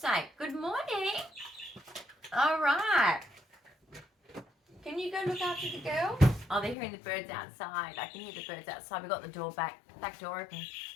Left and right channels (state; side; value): drops out; right; at 6.8 s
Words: Good morning. All right. Can you go look after the girl? Oh, they're hearing the birds outside. I can hear the birds outside. We got the door back door open.